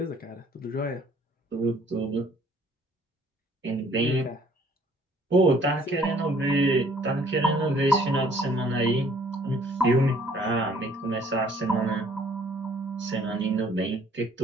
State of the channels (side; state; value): both; normal; correlation 0.59